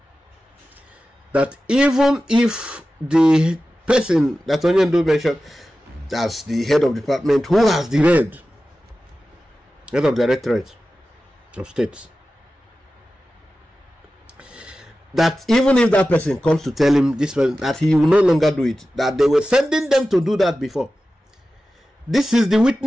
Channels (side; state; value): both; normal; correlation 0.94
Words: That even if the person that Onyendu mentioned as the head of department, who has the head of directorate of states, that even if that person comes to tell him this person that he will no longer do it, that they were sending them to do that before. This is the